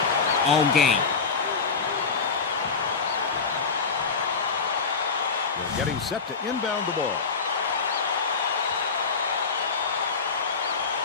all game. They're getting set to inbound the ball.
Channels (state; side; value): quieter; right; 5.0 dB